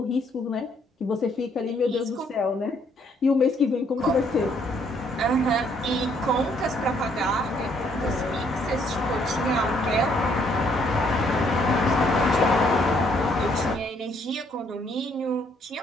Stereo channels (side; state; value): both; normal; correlation 0.67